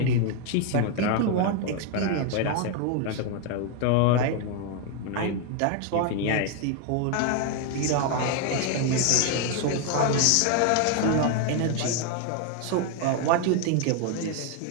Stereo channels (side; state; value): both; different; correlation 0.01